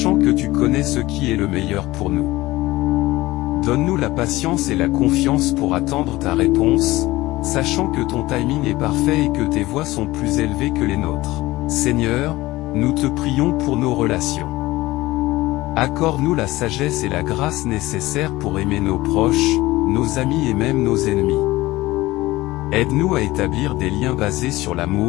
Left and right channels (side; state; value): right; quieter; 18.6 dB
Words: que tu connais ce qui est le meilleur pour nous. Donne-nous la patience et la confiance pour attendre ta réponse, sachant que ton timing est parfait et que tes voies sont plus élevées que les nôtres. Seigneur, nous te prions pour nos relations. Accorde-nous la sagesse et la grâce nécessaires pour aimer nos proches, nos amis et même nos ennemis. Aide-nous à établir des liens basés sur